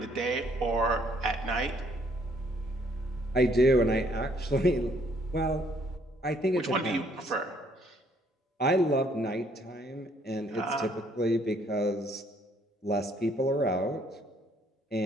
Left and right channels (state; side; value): normal; both; correlation 0.66